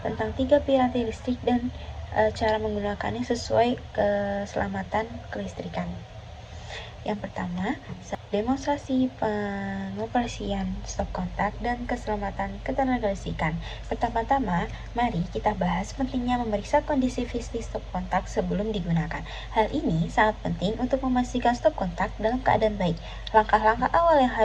tentang 3 piranti listrik dan cara menggunakannya sesuai keselamatan kelistrikan. Yang pertama, demonstrasi pengoperasian stop kontak dan keselamatan ketenagalistrikan. Pertama-tama, mari kita bahas pentingnya memeriksa kondisi fisik stop kontak sebelum digunakan. Hal ini sangat penting untuk memastikan stop kontak dalam keadaan baik. Langkah-langkah awal yang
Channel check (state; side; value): identical; both; correlation 1.00